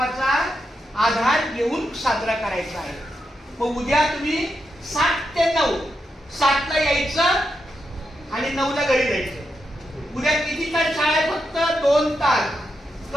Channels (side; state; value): both; normal; correlation 0.85